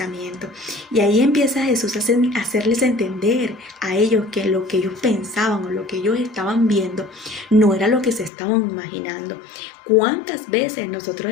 Y ahí empieza Jesús a hacerles entender a ellos que lo que ellos pensaban o lo que ellos estaban viendo no era lo que se estaban imaginando. ¿Cuántas veces nosotros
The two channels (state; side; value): drops out; right; at 8.3 s